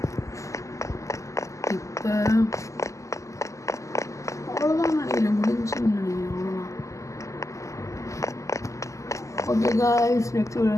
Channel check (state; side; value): late; right; 0.16 ms